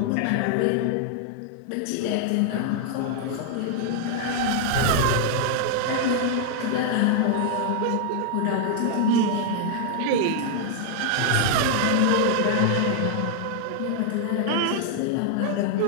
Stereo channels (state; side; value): different; both; correlation 0.00